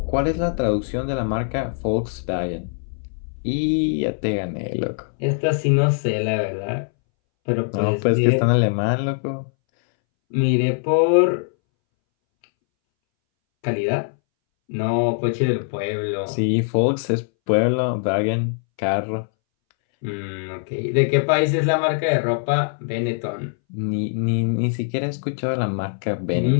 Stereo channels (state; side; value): silent; right; 63 dB below the other